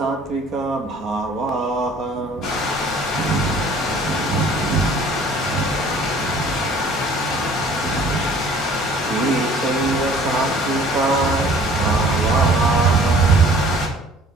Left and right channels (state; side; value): normal; both; correlation 0.52